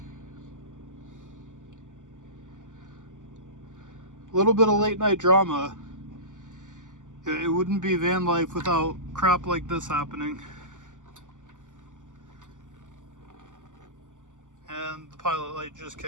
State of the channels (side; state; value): left; late; 0.87 ms